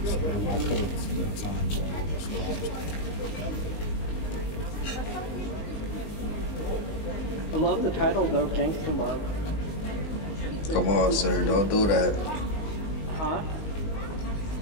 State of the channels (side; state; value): right; late; 19 ms